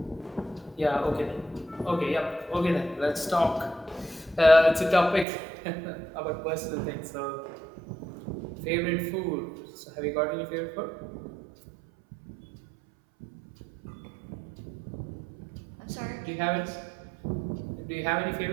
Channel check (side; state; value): left; drops out; at 5.2 s